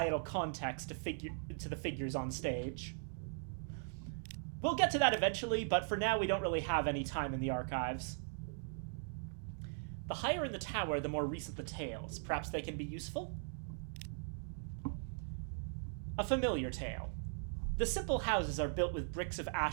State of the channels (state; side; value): silent; left; digital silence